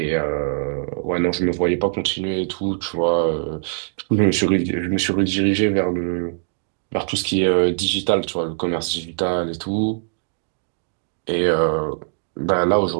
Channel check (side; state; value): left; silent; digital silence